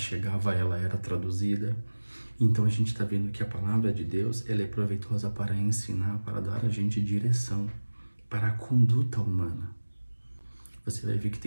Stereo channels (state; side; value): inverted; both; correlation -1.00